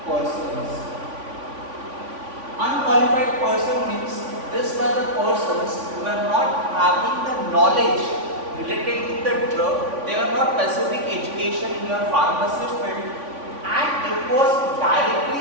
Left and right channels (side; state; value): left; late; 3.5 ms